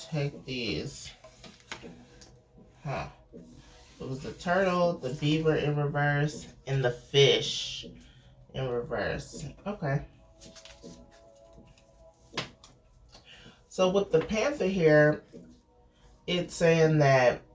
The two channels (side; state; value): both; identical; correlation 1.00